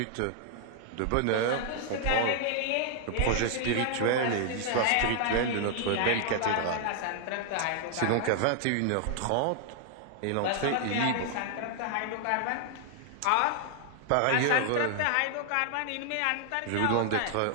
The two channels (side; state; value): both; different; correlation 0.00